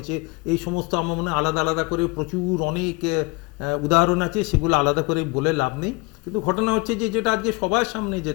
এই সমস্ত আমার মনে হয় আলাদা আলাদা করে প্রচুর অনেক উদাহরণ আছে, সেগুলো আলাদা করে বলে লাভ নেই। কিন্তু ঘটনা হচ্ছে যে যেটা আজকে সবার সামনে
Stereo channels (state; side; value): quieter; right; 25.4 dB